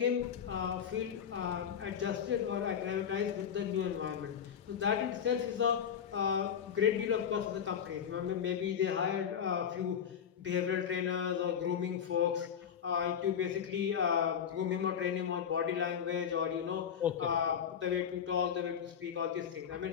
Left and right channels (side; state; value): right; quieter; 8.1 dB